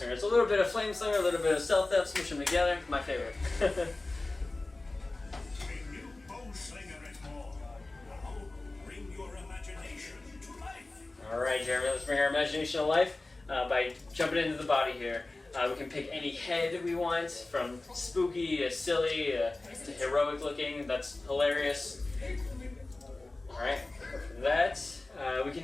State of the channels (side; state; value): right; quieter; 3.0 dB